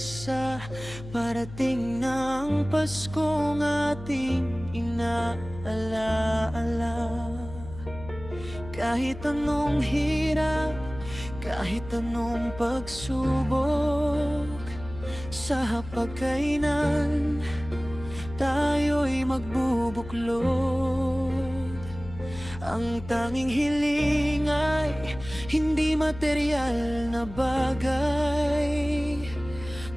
Parating ng Paskong ating inaalaala. Kahit anong hirap, kahit anong pagsubok, sa hapagkainan tayo'y magbubuklod. Ang tanging hiling ay hindi material na bagay,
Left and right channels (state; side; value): noise; left; hum, 13 dB below the sound